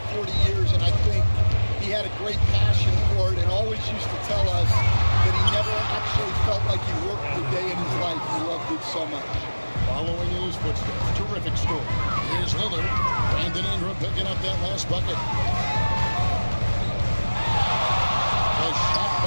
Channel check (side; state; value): both; inverted; correlation -1.00